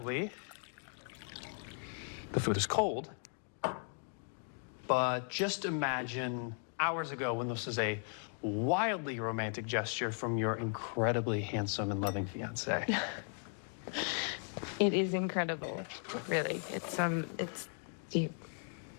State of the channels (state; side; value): silent; right; 53 dB below the other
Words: the food is cold. But just imagine hours ago when this was a wildly romantic gesture from your incredibly handsome and loving fiance. It is incredible, really. It's you